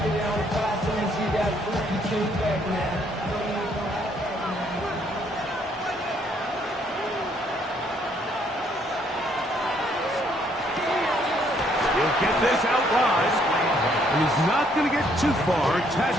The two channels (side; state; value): both; normal; correlation 0.68